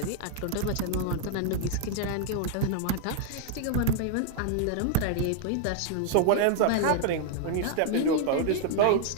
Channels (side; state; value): both; different; correlation 0.00